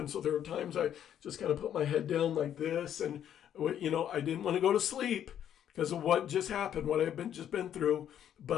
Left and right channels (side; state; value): right; quieter; 10.0 dB